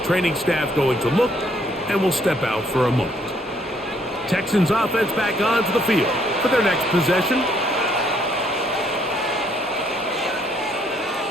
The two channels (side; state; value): both; normal; correlation 0.68